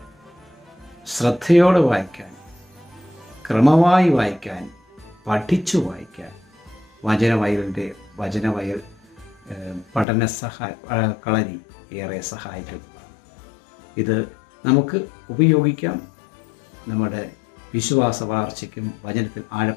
ശ്രദ്ധയോടെ വായിക്കാൻ, ക്രമമായി വായിക്കാൻ, പഠിച്ചു വായിക്കാൻ വചനവയൽ പഠന കളരി ഏറെ സഹായിക്കുന്നതാണ്. ഇത് നമുക്ക് ഉപയോഗിക്കാം. നമ്മുടെ വിശ്വാസ വളർച്ചയ്ക്കും വചനത്തിൽ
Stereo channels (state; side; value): drops out; right; at 10.1 s